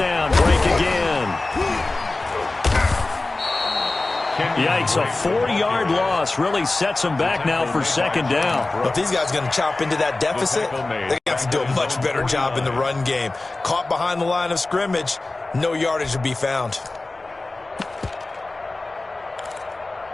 break again. Yikes, a 4-yard loss really sets them back now for 2nd down. Well, if these guys are going to chop into that deficit, they're going to have to do a much better job in the run game. Caught behind the line of scrimmage, no yardage to be found.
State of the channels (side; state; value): right; quieter; 3.1 dB